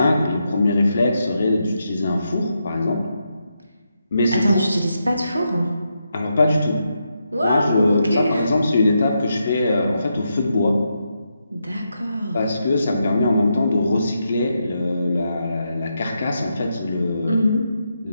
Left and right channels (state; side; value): inverted; both; correlation -0.83